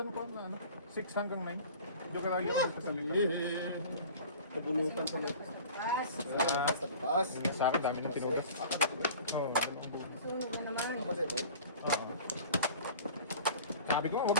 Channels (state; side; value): inverted; both; correlation -0.42